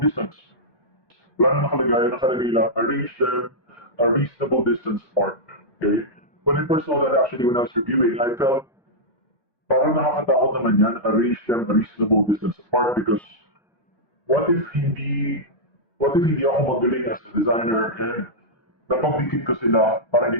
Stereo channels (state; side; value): late; right; 1.2 ms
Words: distance? Wala na nakalagay, nakalagay lang, arrange them a reasonable distance apart. Okay? When I first saw that actually when I was reviewing, I felt parang nakakatakot naman yan, arrange them a reasonable distance apart because what if hindi, what if hindi ako magaling as a designer and napag-defeat ko sila, parang